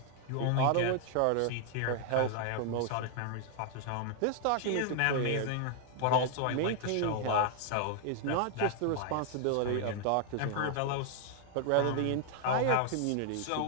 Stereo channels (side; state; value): both; different; correlation 0.00